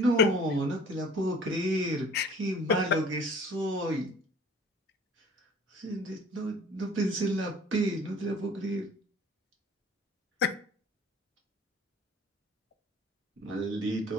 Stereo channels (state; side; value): normal; both; correlation 0.49